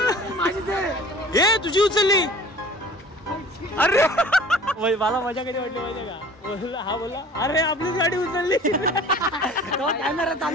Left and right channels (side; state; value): both; normal; correlation 0.46